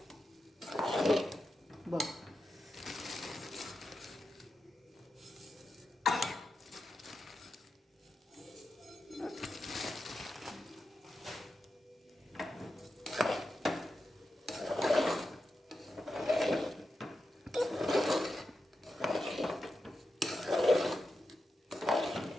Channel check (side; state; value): both; normal; correlation 0.88